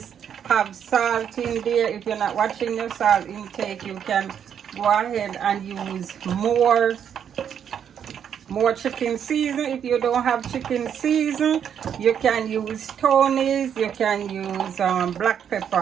have salt in there. If you're not watching your salt intake, you can go ahead and use more chicken season. If you don't have chicken season, you can use Tony's, you can use black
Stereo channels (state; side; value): quieter; left; 8.5 dB